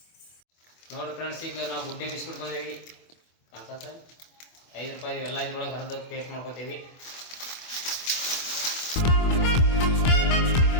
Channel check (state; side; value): late; right; 24 ms